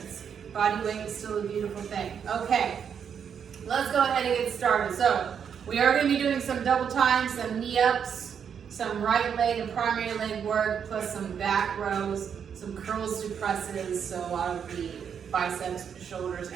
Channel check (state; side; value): quieter; left; 7.5 dB